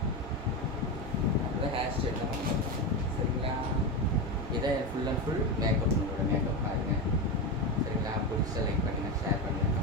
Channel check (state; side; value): normal; both; correlation 0.16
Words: அப்படிதான் ஹேர் ஸ்டைல் தான் பண்ணுவோம். சரிங்களா? இதை ஃபுல் அண்ட் ஃபுல் மேக்கப் உங்களோட மேக்கப் பாருங்க. சரிங்களா? பிடிச்ச லைக் பண்ணுங்கள், ஷேர் பண்ணுங்கள்,